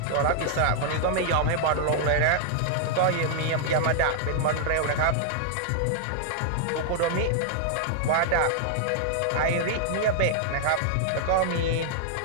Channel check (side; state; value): both; different; correlation -0.01